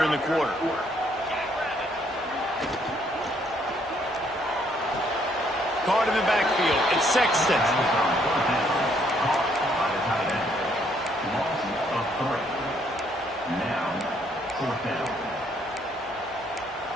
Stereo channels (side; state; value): both; normal; correlation 0.68